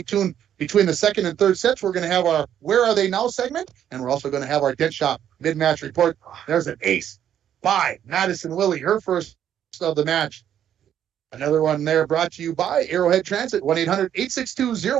tuned between the second and third sets. We're going to have our Where Are They Now segment, and we're also going to have our Dent Shop mid-match report. There's an ace by Madison Willie, her first of the match. Another one there brought to you by Arrowhead Transit,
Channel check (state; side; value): quieter; left; 10.0 dB